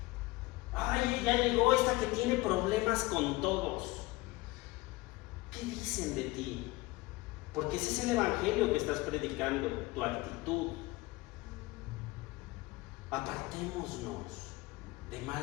Ay, ya llegó esta que tiene problemas con todos. ¿Qué dicen de ti? Porque ese es el evangelio que estás predicando, tu actitud. Apartémonos de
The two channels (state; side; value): quieter; right; 21.2 dB